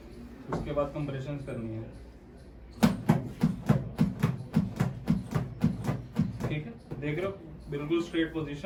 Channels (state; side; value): identical; both; correlation 1.00